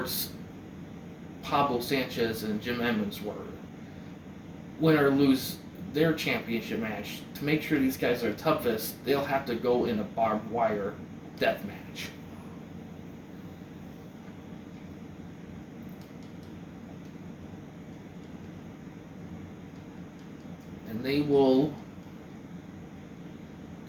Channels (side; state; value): both; identical; correlation 1.00